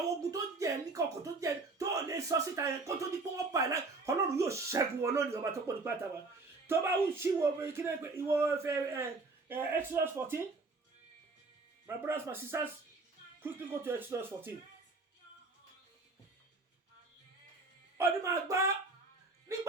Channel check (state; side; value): quieter; left; 3.6 dB